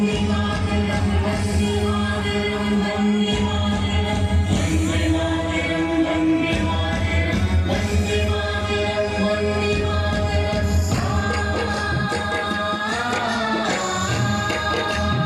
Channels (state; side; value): identical; both; correlation 1.00